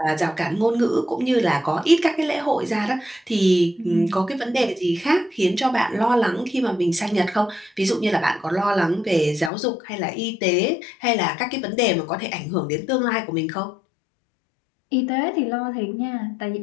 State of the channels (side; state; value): right; drops out; at 9.5 s